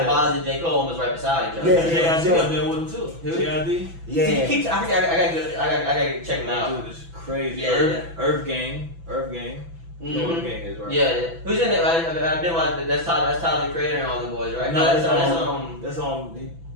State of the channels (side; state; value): left; late; 6.0 ms